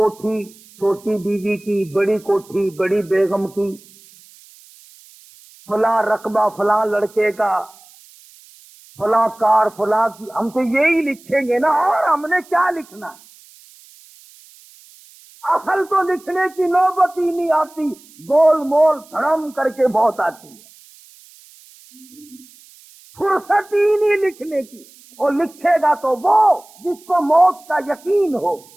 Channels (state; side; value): noise; right; hiss, 25 dB below the sound